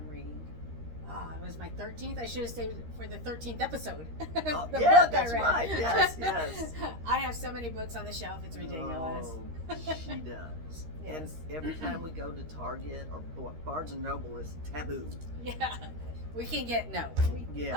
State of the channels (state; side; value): late; left; 13 ms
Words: reading. It was my 13th. I should have saved it for the 13th episode. Oh, The yeah, book that's I read. right. Yes. I have so many books on the shelf. It's ridiculous. Oh, she does. Yes. And every time we go to Target or Barnes and Noble is taboo. Yeah. We can get Yeah.